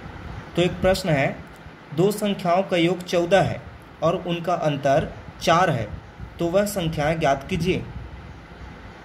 तो एक प्रश्न है, दो संख्याओं का योग 14 है और उनका अंतर 4 है, तो वह संख्याएं ज्ञात कीजिए।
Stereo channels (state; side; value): identical; both; correlation 1.00